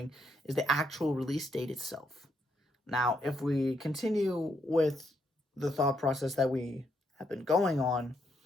is the actual release date itself. Now, if we continue with the thought process that we have been going on,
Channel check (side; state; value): both; normal; correlation 0.77